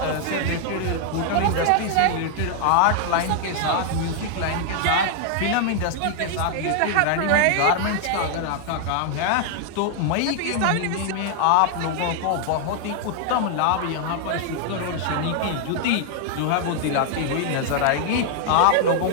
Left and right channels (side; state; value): both; different; correlation 0.00